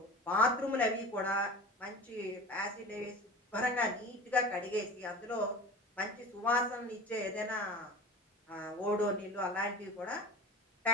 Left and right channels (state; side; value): normal; both; correlation 0.36